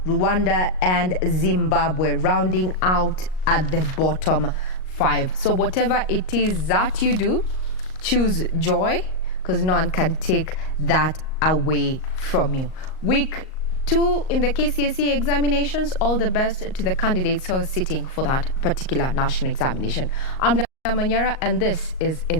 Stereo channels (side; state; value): right; late; 38 ms